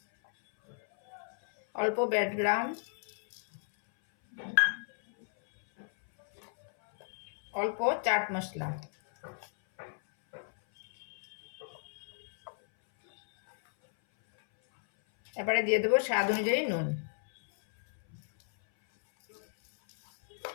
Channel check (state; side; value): silent; right; 56 dB below the other